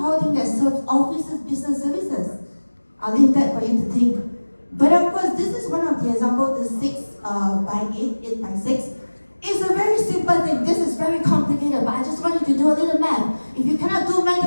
team that serves offices, business services? I'll leave that for you to think. But of course, this is one of the examples, the 6 by 8 by 6. It's a very simple thing. This is very complicated, but I just want you to do a little math. If you cannot do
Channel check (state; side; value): inverted; both; correlation -1.00